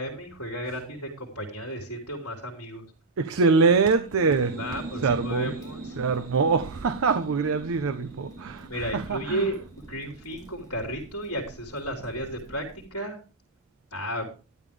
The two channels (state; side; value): quieter; left; 3.6 dB